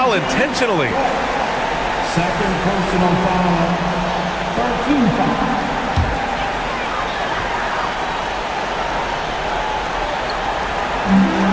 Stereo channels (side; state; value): both; identical; correlation 1.00